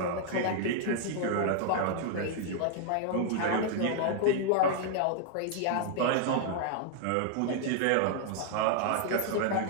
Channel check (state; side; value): different; both; correlation 0.00